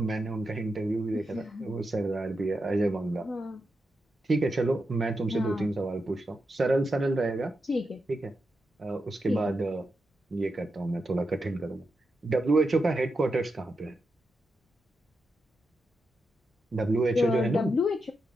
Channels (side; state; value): both; normal; correlation 0.87